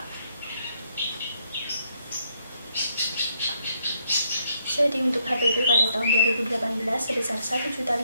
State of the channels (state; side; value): inverted; both; correlation -0.74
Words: PP pada tahun 2018 sebesar